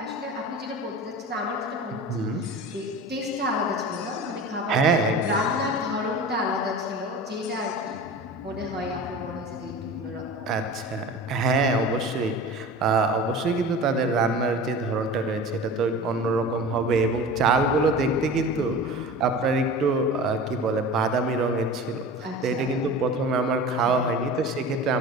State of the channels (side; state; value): both; normal; correlation 0.35